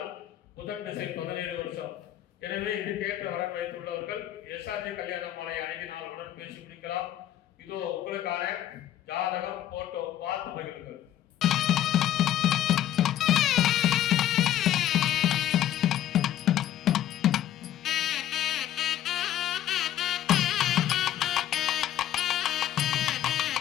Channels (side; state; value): right; quieter; 12.0 dB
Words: புதன் திசை 17 வருஷம். எனவே இதுக்கேற்ற வரன் வைத்துள்ளவர்கள் எஸ்ஆர்ஜி கல்யாண மாலை அணுகி நாளுடன் பேசி முடிக்கலாம். இதோ உங்களுக்கான ஜாதகம் போட்டோ பார்த்து மகிழுங்கள்.